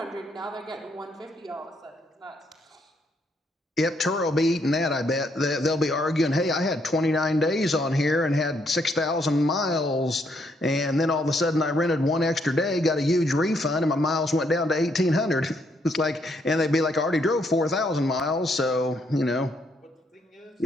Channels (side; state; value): both; normal; correlation 0.73